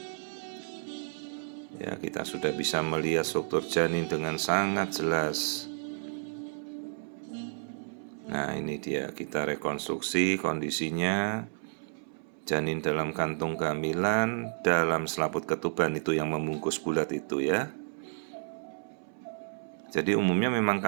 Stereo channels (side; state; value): left; silent; 57 dB below the other